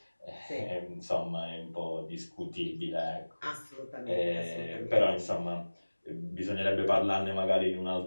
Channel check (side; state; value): both; inverted; correlation -1.00